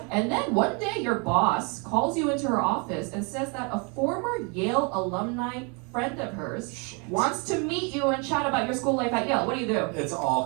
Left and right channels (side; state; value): left; quieter; 33.3 dB